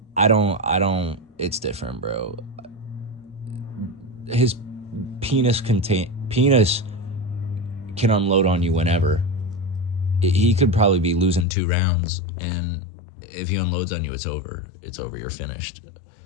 It's different, bro. His penis can unload on you whenever. He could probably be losing 2 rounds, and if he unloads on you, it's over. It's over. You're finished.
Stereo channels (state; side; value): drops out; right; at 11.5 s